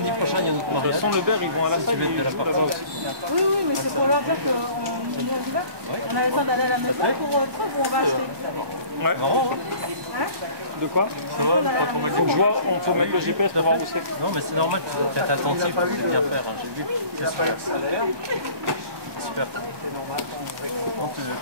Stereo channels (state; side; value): late; left; 1.1 ms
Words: prochain, il y a notre De toute mariage. façon, le beurre, ils vont à la salle. De la part. Oui, oui, mais c'est pour leur dire qu'on y va. On avait le temps d'aller à la maison pour truc où on va acheter. Ouais. Marrant, Hein? De quoi? Ça va, pas trop mal. Faut que je vois, on peut mettre le GPS pour voir où c'est. Non, mais c'est normal, tu dois être attentif, c'est bien faire. Hein. J'ai vu, c'est super. Super. Donc,